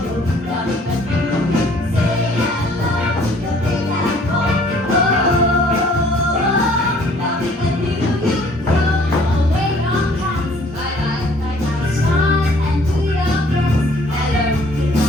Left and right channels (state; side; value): normal; both; correlation 0.57